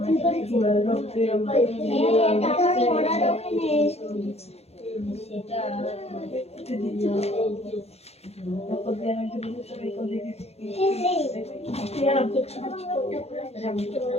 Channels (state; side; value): late; right; 0.30 ms